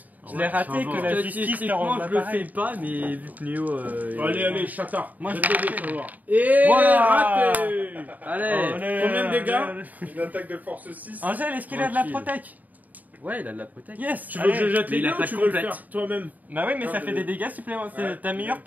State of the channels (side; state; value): left; late; 0.079 ms